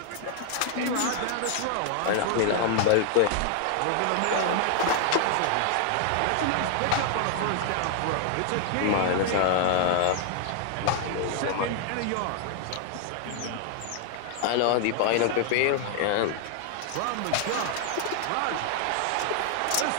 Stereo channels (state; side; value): different; both; correlation 0.00